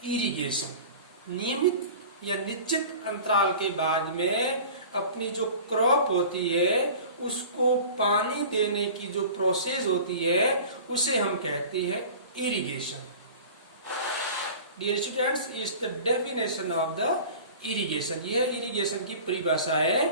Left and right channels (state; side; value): inverted; both; correlation -0.40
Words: irrigation. नियमित या निश्चित अंतराल के बाद में अपनी जो क्रॉप होती है उसको पानी देने की जो प्रोसेस होती है उसे हम कहते हैं irrigation. Dear students, is the definition of the irrigation. यह इरिगेशन की परिभाषा है.